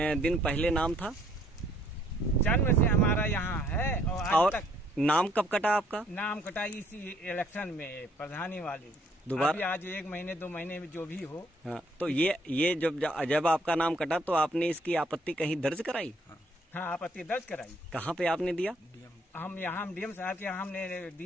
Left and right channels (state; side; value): normal; both; correlation 0.65